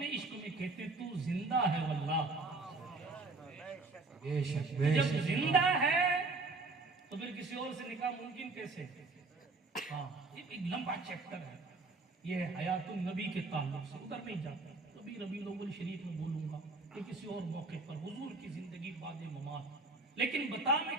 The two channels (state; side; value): quieter; left; 3.5 dB